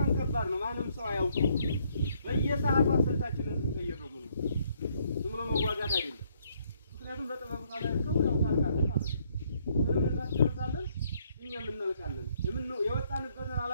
ከባድ ነው። ማንም ሰው አያውቅም። በየሰዓቱ ስልታችንን እንቀይረው ነው ዝም ብሎ መዋጋት አይደለም። ምክንያቱም በጥበብ ካላልከው ያው ታልካለህ ማለት ነው። ምንም እናስጨርሳለን እኛም እናልቃለን። የወጣንበትን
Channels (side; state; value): both; inverted; correlation -0.69